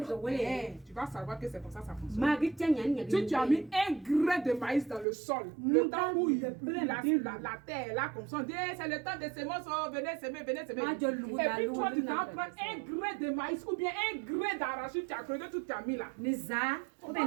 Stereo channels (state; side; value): drops out; left; at 5.1 s